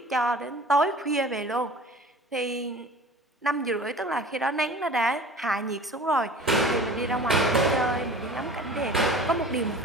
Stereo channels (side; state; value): both; normal; correlation 0.42